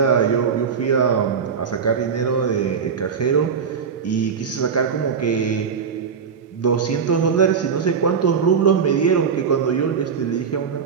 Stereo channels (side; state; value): left; quieter; 6.4 dB